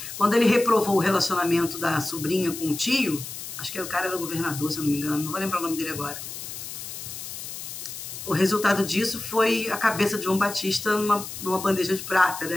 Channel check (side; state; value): left; noise; hiss, 9 dB below the sound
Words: Quando ele reprovou o relacionamento da sobrinha com o tio, acho que o cara era governador, se eu não me engano, não vou lembrar o nome dele agora. O resultado disso foi a cabeça de João Batista numa bandeja de prata,